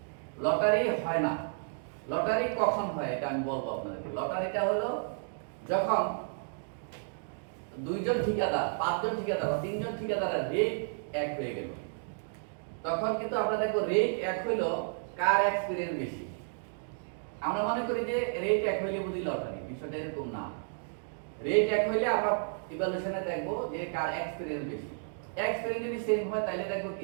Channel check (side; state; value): left; silent; digital silence